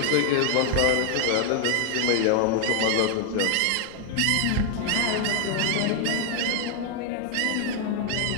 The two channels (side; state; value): both; different; correlation 0.00